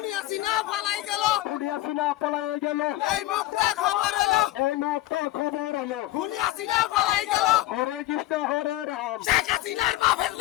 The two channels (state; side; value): quieter; right; 16.5 dB